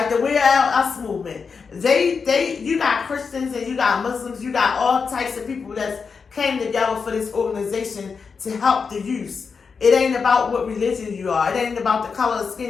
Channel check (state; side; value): quieter; right; 5.4 dB